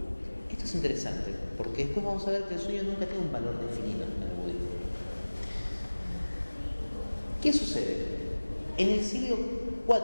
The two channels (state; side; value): inverted; both; correlation -1.00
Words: Esto es interesante, porque después vamos a ver que el sueño nunca tiene un valor definido en el budismo. ¿Qué sucede? En el siglo